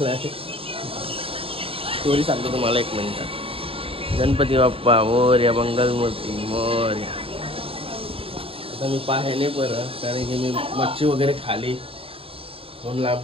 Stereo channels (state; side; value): late; left; 0.27 ms